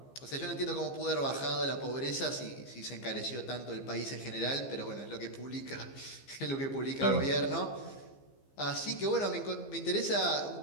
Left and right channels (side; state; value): right; late; 15 ms